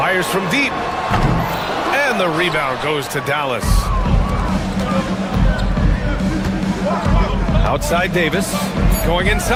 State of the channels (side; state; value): both; identical; correlation 1.00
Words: from deep. And the rebound goes to Dallas. Outside Davis. Going